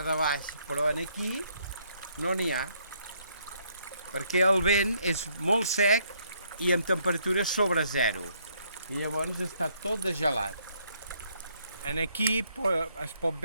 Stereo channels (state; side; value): inverted; both; correlation -0.69